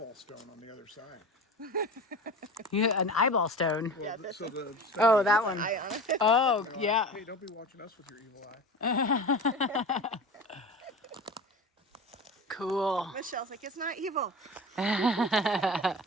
stone on the other side. yeah, an eyeball stone. Well, Yeah, that's so the Oh, that one. Eye on it. Oh, they're like, yeah. hey, don't be watching us with your evil eye. Cool. Michelle's like, it's not evil.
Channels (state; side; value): normal; both; correlation 0.32